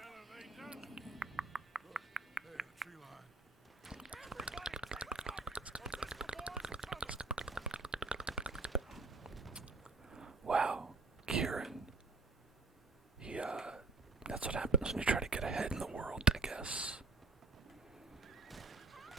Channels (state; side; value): quieter; left; 3.8 dB